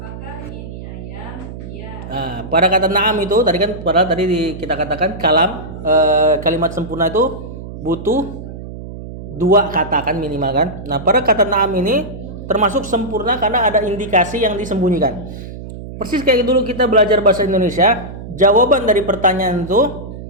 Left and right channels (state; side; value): noise; right; hum, 11 dB below the sound